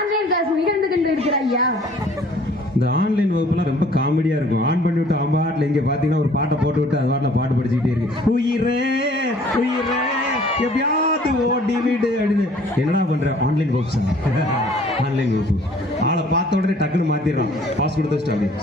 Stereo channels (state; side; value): normal; both; correlation 0.55